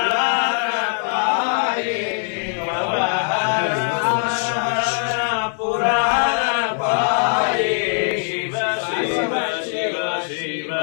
ಪಾಯೇ ಭವಹರ ಪುರಾಣ ಪಾಯೇ ಶಿವ ಶಿವ ಶಿವ ಶಿವ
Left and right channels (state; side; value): silent; right; digital silence